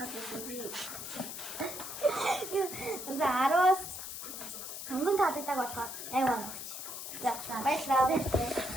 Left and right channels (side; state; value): left; noise; hiss, 8 dB below the sound